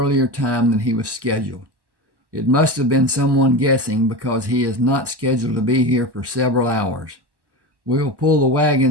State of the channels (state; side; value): late; left; 1.1 ms